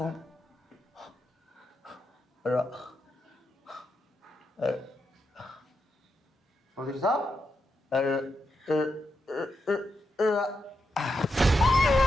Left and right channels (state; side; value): normal; both; correlation 0.85